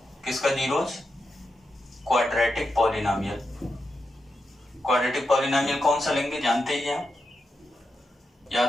किसका zeros? Quadratic polynomial. Quadratic polynomial कौन सा लेंगे जानते ही हैं,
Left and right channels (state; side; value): normal; both; correlation 0.87